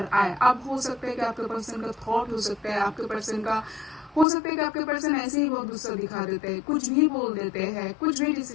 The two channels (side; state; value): right; drops out; at 4.2 s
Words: आए। अब हो सकता है कि आपके पर्सन का थॉट हो सकता है, आपके पर्सन का हो सकता है कि आपके पर्सन ऐसे ही बहुत गुस्सा दिखा देते हैं, कुछ भी बोल देते हैं, कुछ भी